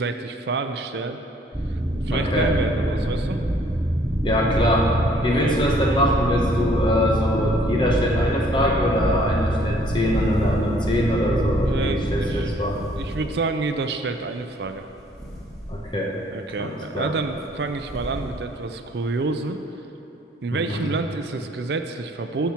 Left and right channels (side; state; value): both; normal; correlation 0.61